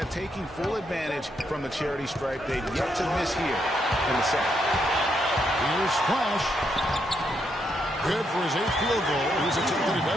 taking full advantage from the charity stripe. They've yet to miss here in the second. Here's Flash. Good for his 8th field goal. He's attempted a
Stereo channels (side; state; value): both; normal; correlation 0.78